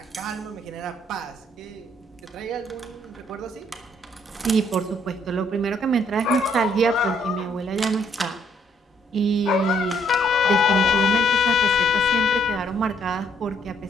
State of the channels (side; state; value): both; normal; correlation 0.68